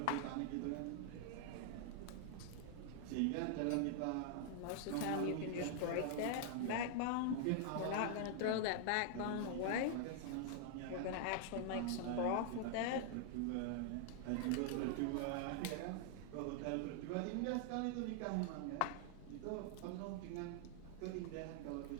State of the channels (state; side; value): different; both; correlation 0.00